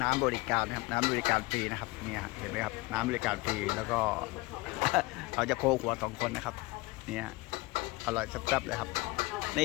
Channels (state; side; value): quieter; right; 22.6 dB